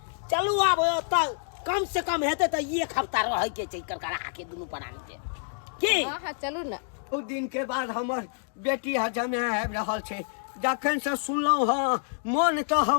चलू, अब त कम से कम हेते तो 1 हफ्ता रह के छै करकरा आके दुनू प्राणी के की। हां हां चलू ना। ओ दिन के बाद हमर बेटी हजमे आबि रहल छै, जखन से सुनलहुँ हँ मन तो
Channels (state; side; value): silent; right; digital silence